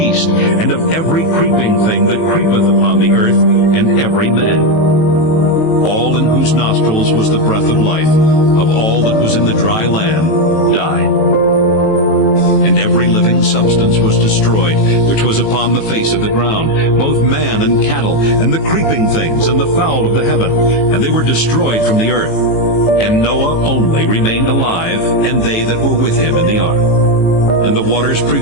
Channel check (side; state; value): right; late; 18 ms